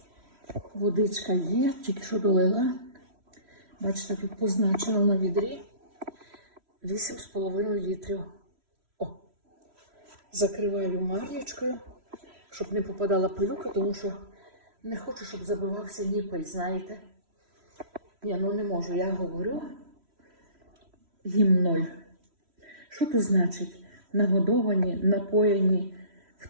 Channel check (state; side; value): late; left; 3.1 ms